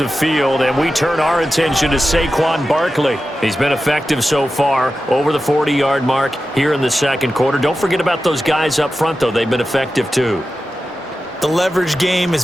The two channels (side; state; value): both; normal; correlation 0.92